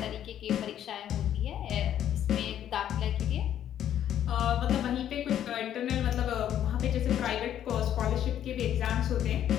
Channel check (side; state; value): right; quieter; 10.6 dB